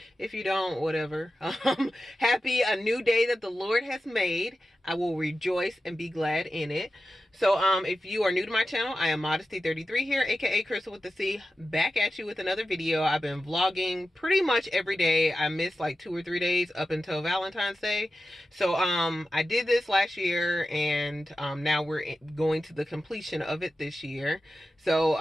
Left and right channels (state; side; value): normal; both; correlation 0.92